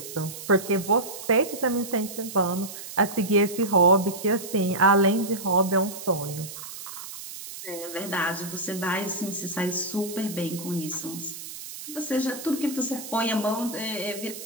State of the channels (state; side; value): noise; right; hiss, 11 dB below the sound